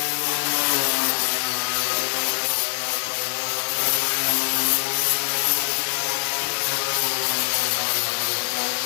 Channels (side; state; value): right; silent; 63 dB below the other